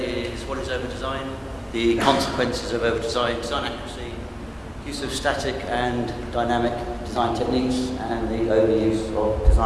is what is over-design, the consequences of over-design, design accuracy, use of static and dynamic design techniques, and the overuse of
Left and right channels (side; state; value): both; identical; correlation 1.00